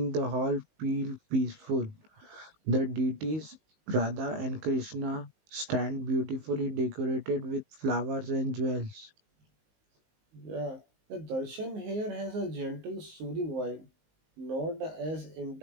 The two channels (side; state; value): left; late; 19 ms